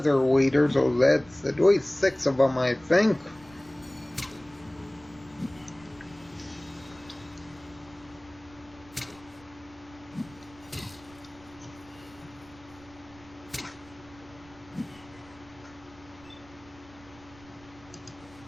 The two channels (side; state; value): right; noise; rumble, 24 dB below the sound